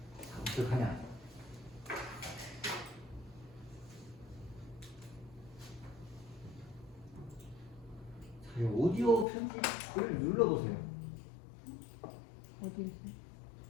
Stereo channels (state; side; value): drops out; right; at 9.2 s